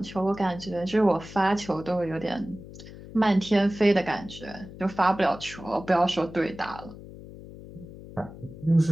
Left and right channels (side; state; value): left; noise; hum, 15 dB below the sound